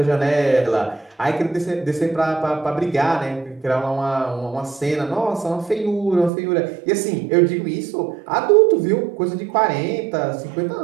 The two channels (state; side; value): drops out; left; at 6.3 s